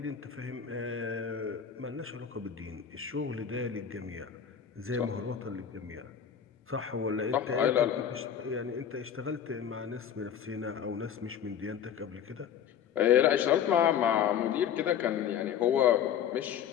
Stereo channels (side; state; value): right; quieter; 8.6 dB